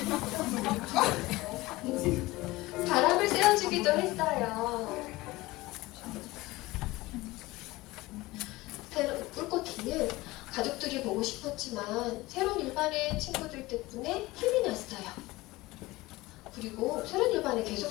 바람을 쐬어주기도 했어요. 꿀꽃이는 가족들이 보고 싶었지만 새로운 일반의 친구들 덕분에 힘이 났어요. 그리고 새로운 일반에 계속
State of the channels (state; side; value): quieter; right; 19.9 dB